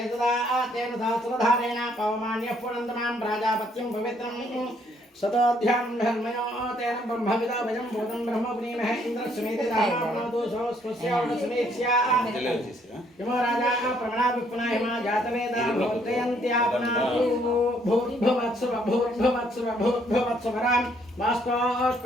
सदा तेन सहस्रधारेण पवमान्यः पुनन्दमां प्राजापत्यं पवित्रं सदाध्यां धर्मयो तेन ब्रह्मविदाभयं भूतं ब्रह्मपुनीमहे इन्द्रस्वमेते दाहनापनोतु स्वस्यावसमेत्स्या यमो राजा प्रमणाभिपुनाहिमा जातवेदा भूर्जयन्त्यापनातु भूर्भुवत्सुवरां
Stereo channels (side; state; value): both; normal; correlation 0.67